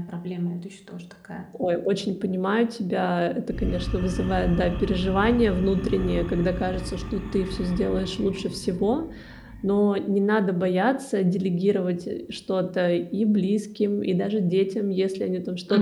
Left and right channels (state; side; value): identical; both; correlation 1.00